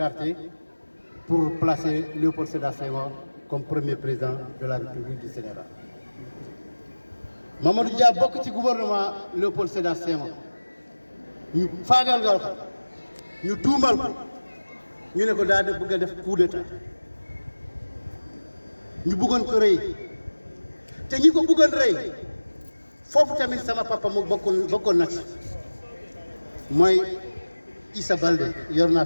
pour placer Léopold Sédar Senghor comme premier président de la République du Sénégal. Mamadou Dia bokk ci gouvernement Léopold Sédar Senghor ñu faagaalgal ko ñu tuumal ko ñu ne ko daal di bëgg a def coup d'état ñu bëggoon ko rey te ñi ko bëggoon rey foofu tamit sama papa mu bokkoon na ci mooy Issa Baldé yor naa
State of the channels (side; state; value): both; inverted; correlation -1.00